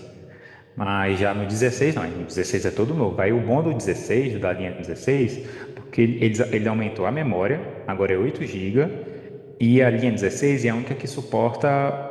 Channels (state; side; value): identical; both; correlation 1.00